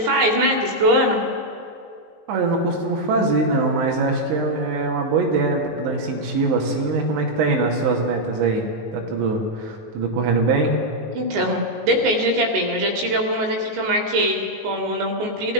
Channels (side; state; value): left; late; 19 ms